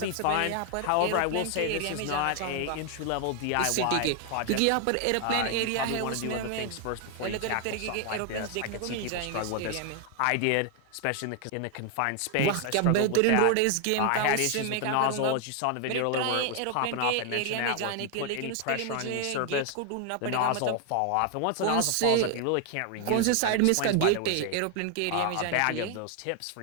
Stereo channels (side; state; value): both; different; correlation 0.00